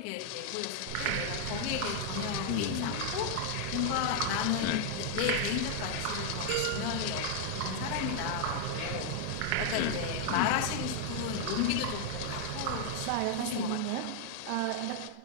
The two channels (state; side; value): different; both; correlation 0.00